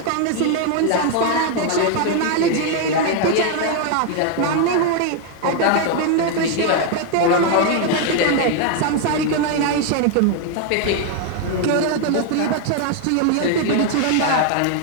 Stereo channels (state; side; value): different; both; correlation 0.00